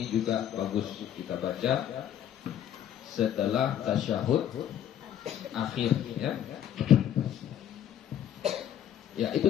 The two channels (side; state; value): right; quieter; 10.3 dB